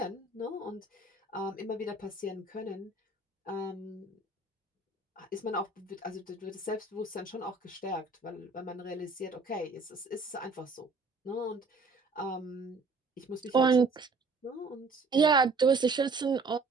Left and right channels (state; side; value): quieter; left; 3.6 dB